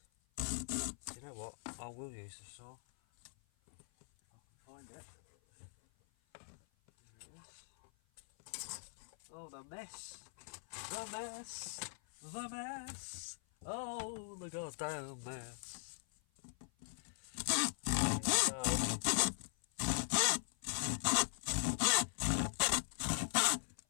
You know what? I will use the saw. If I can find it. There it is. Oh, the mess. The mess. The mess. Oh, the goddamn mess. There we go.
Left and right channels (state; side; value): silent; right; 51 dB below the other